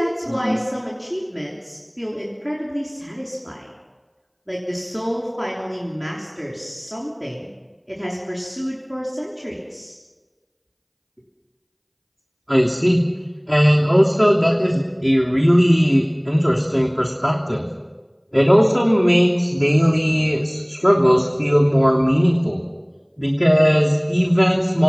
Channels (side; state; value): both; identical; correlation 1.00